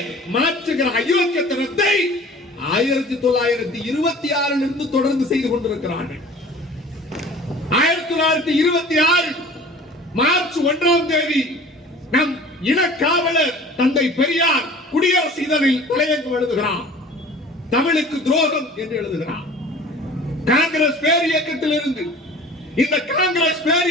மாற்றுகிற அயோக்கியத்தனத்தை 1926 இருந்து தொடர்ந்து செய்து கொண்டிருக்கிறார்கள். 1926 மார்ச் 1ஆம் தேதி நம் இனக்காவலர் தந்தை பெரியார் குடியரசு இதழில் தலையங்கம் எழுதுகிறார். தமிழுக்கு துரோகம் என்று எழுதுகிறார். காங்கிரஸ் பேர் இயக்கத்தில் இருந்து இந்த காங்கிரஸ் பேர்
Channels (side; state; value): both; normal; correlation 0.44